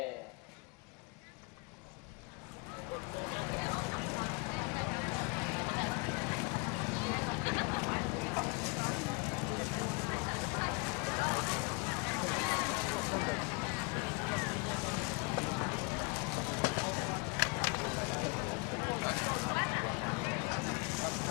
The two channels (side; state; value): right; quieter; 31.7 dB